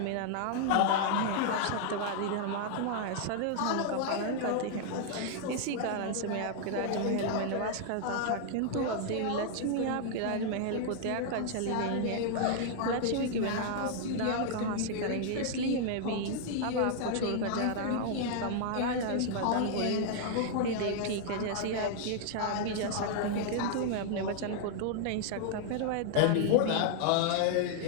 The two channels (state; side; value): different; both; correlation -0.01